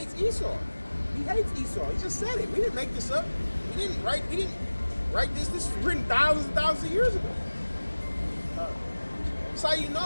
Esau. He hates Esau. He just said it. We didn't make this up. We didn't write this. This was written thousands and thousands of years ago. That's how you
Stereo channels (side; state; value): both; inverted; correlation -1.00